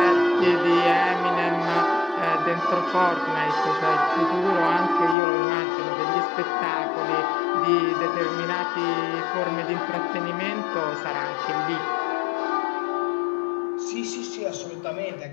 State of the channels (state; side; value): drops out; right; at 5.2 s